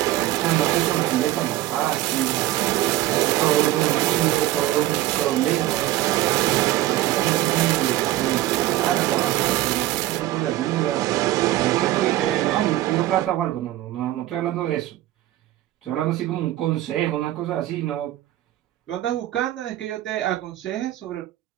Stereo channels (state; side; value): quieter; left; 15.2 dB